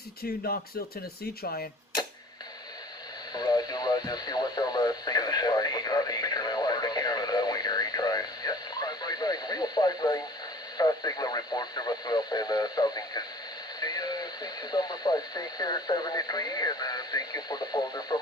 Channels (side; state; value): both; normal; correlation 0.47